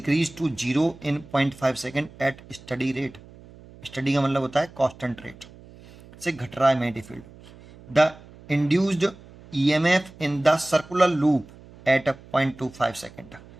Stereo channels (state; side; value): noise; right; hum, 21 dB below the sound